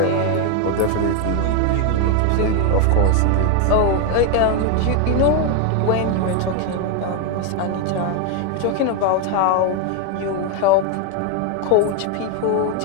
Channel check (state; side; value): different; both; correlation 0.01